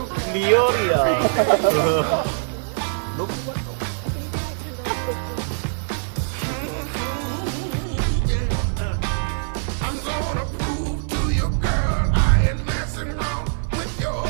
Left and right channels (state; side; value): silent; left; 55 dB below the other